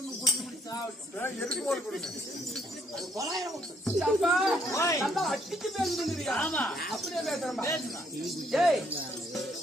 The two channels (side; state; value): both; normal; correlation 0.70